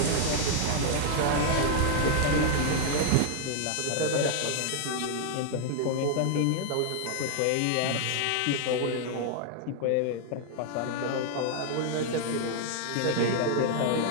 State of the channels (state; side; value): different; both; correlation 0.00